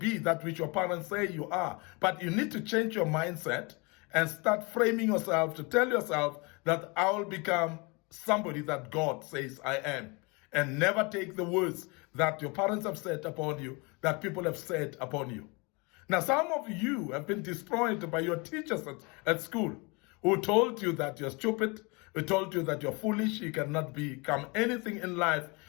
that which your parents say you are. But you need to change your mindset and start framing yourself to tell yourself that I will become somebody that God says I am. And never take the words that your parents have said upon you, that people have said upon you. Now, some of you have been destroyed by your teachers at school, who told you that you're stupid, who told you that you're foolish, you cannot become anything in life.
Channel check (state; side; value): quieter; right; 28.8 dB